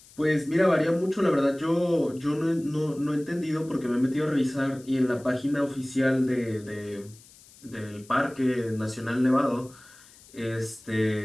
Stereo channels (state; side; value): noise; left; hiss, 24 dB below the sound